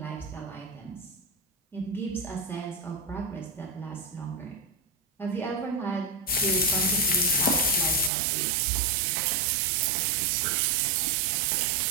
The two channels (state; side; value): drops out; left; at 8.1 s